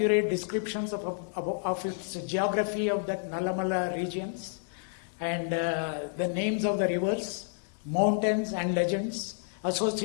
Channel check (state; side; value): silent; right; 58 dB below the other